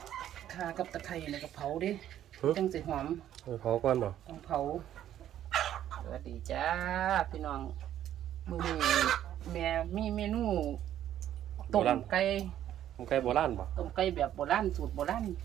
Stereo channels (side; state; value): left; quieter; 11.4 dB